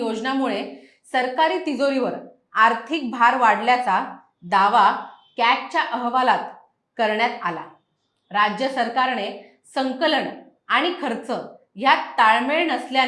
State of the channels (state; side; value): identical; both; correlation 1.00